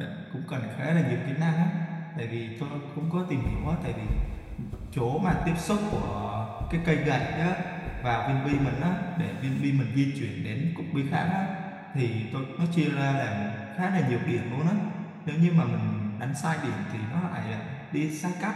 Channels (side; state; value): both; identical; correlation 1.00